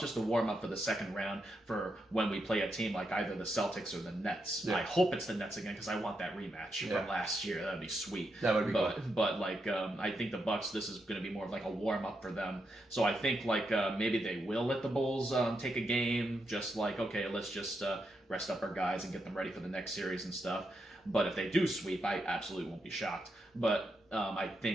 a warm-up for the second round for when we play a team like either the Celtics or the Nets. Yeah. I hope it's the Nets again because I want that rematch from last year. That would be sweet. That would be cool. But I think the Bucks, this is going to be more of like a warm-up for them. So I think maybe they will let the Bulls take a game, just like, okay, let's just rest up our guys and get them ready for the next series and stuff. But if they do sweep, I absolutely won't be shocked. But I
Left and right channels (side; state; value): both; normal; correlation 0.83